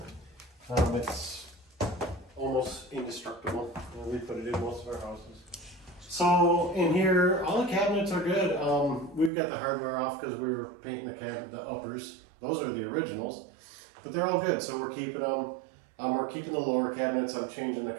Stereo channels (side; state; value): left; drops out; at 9.3 s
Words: It's almost indestructible. We put it in most of our houses. So in here, all the cabinets are good. We've got the hardware off because we were painting the uppers. Those are the originals, but they're all good. So we're keeping them. We're keeping the lower cabinets. I'm changing the